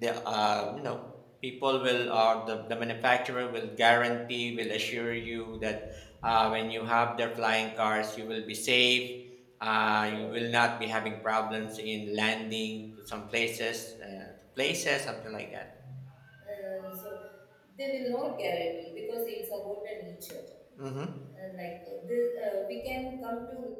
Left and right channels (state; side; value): identical; both; correlation 1.00